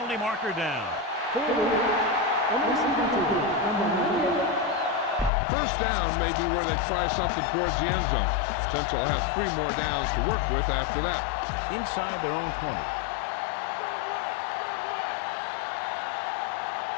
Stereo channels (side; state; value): right; drops out; at 5.3 s